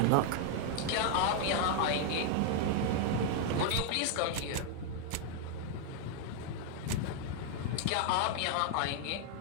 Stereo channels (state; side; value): different; both; correlation 0.00